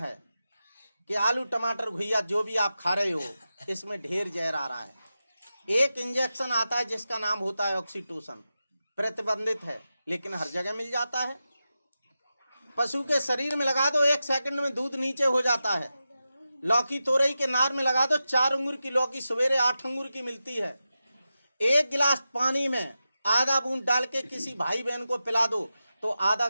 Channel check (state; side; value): inverted; both; correlation -0.91